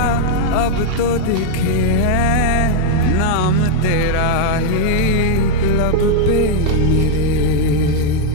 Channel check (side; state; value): both; different; correlation 0.01